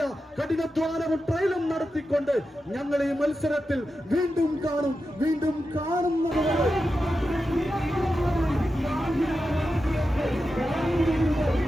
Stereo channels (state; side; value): normal; both; correlation 0.90